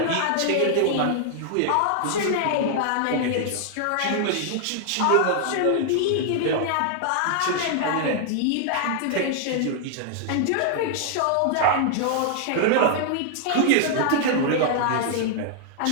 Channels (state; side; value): different; both; correlation 0.00